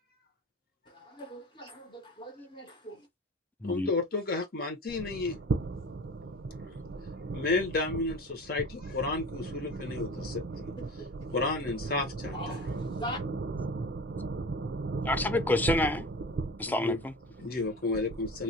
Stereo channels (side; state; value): both; normal; correlation 0.35